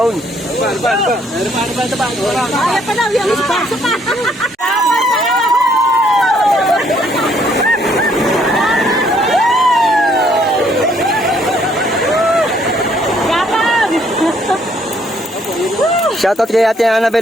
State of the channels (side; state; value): both; normal; correlation 0.66